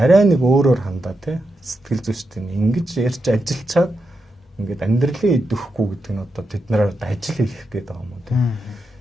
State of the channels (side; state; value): both; normal; correlation 0.86